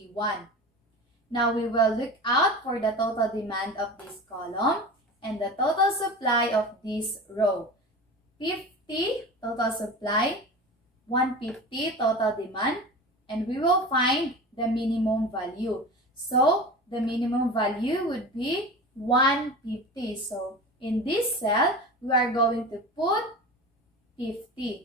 Now, we will look out for the total demand of this column and the total supply of this row. 50 total supply, 150 total demand, and we will find the minimum value. So, the minimum value would be 150. So, in this cell, we are going to put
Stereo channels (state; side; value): normal; both; correlation 0.32